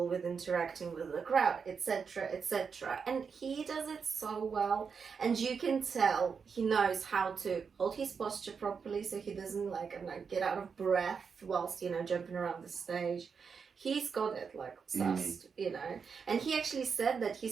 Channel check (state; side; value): quieter; left; 5.9 dB